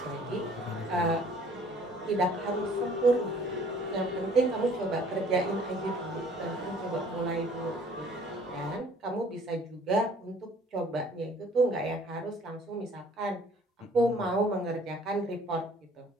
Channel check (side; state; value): both; normal; correlation 0.55